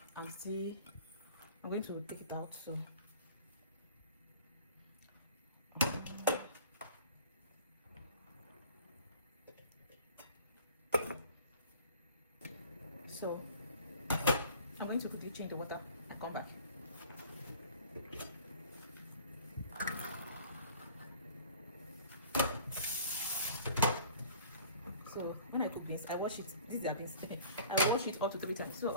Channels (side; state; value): both; inverted; correlation -0.47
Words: I'm going to take it out. So I'm going to quickly change the water and come back. So when I cook beans, I wash it. These are beans. I wash it up to 3 times. So